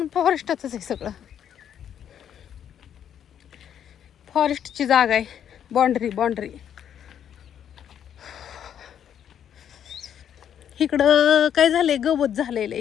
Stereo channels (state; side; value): quieter; right; 9.3 dB